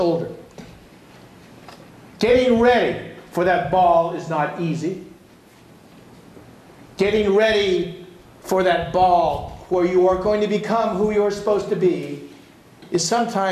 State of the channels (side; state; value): both; identical; correlation 1.00